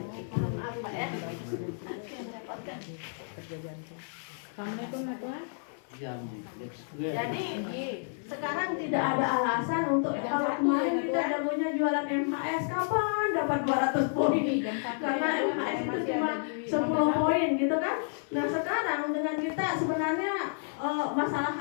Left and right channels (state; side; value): silent; right; 57 dB below the other